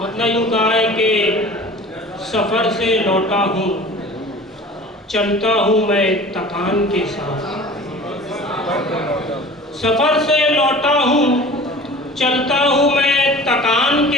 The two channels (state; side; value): normal; both; correlation 0.41